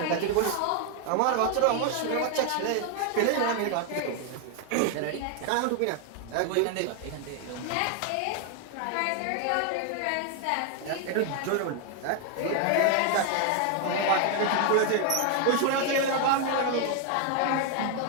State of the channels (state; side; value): different; both; correlation 0.00